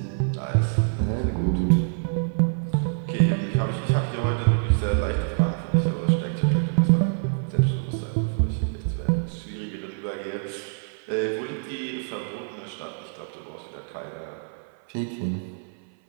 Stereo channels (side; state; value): left; silent; 57 dB below the other